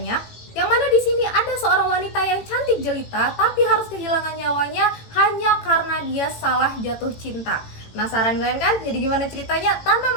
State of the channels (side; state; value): right; late; 18 ms